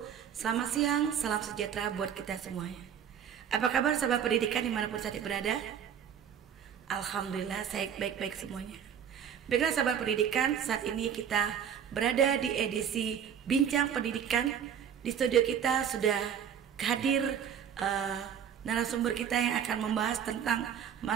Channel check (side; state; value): left; quieter; 8.5 dB